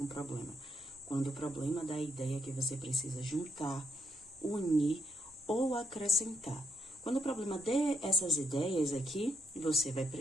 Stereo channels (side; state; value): both; normal; correlation 0.76